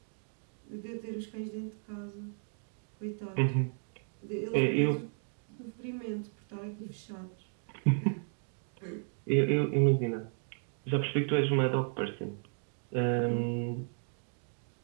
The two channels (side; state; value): left; silent; 55 dB below the other